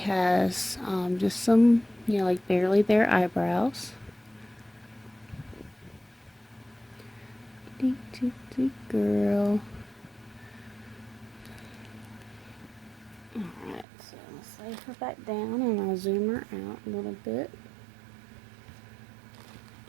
just some, you know, like barely there eyebrows. Girl. Alright, so let's lay her back down and I'll zoom her out a little bit.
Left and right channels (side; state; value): left; drops out; at 13.9 s